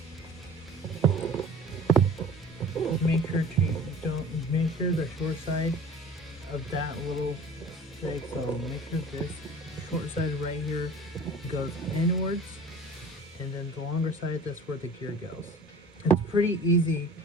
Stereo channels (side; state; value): both; normal; correlation 0.44